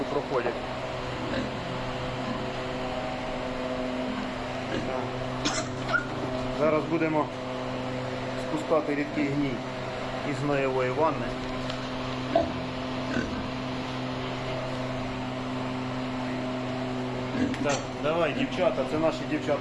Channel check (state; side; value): identical; both; correlation 1.00